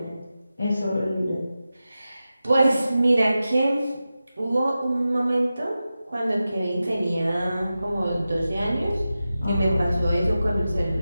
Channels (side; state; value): both; inverted; correlation -0.93